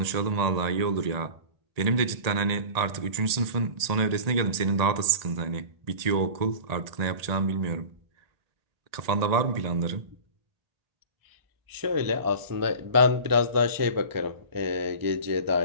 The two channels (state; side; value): late; left; 1.8 ms